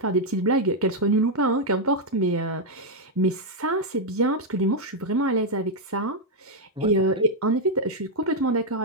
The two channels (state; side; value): normal; both; correlation -0.01